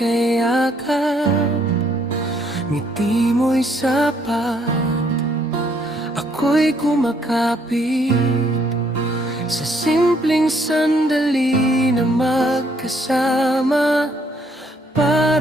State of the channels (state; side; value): normal; both; correlation 0.68